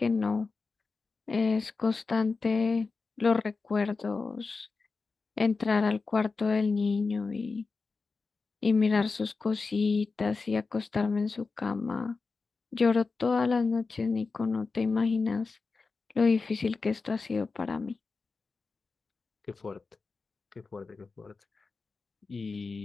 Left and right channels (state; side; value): quieter; right; 4.3 dB